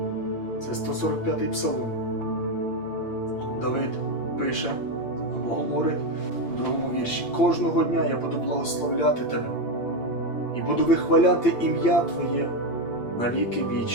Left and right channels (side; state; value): right; late; 8.7 ms